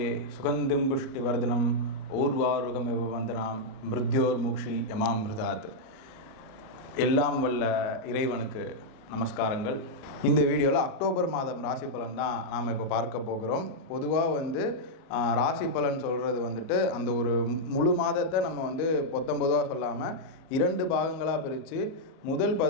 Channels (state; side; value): late; right; 37 ms